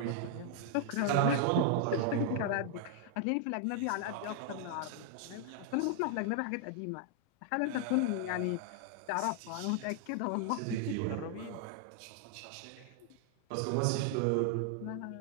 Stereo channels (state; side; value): different; both; correlation 0.00